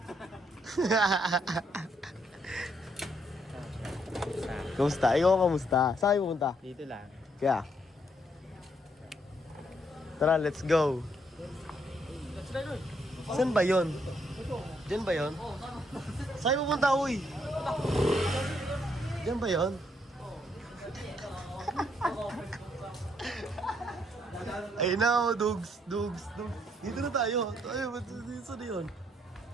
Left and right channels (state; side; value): normal; both; correlation 0.73